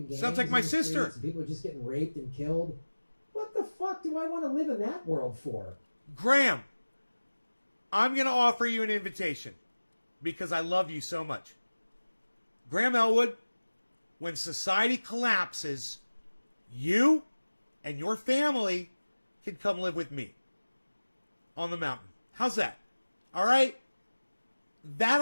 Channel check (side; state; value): both; inverted; correlation -1.00